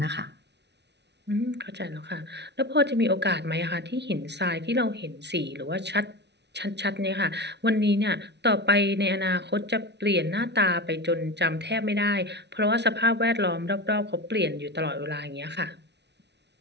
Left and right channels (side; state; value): left; late; 0.50 ms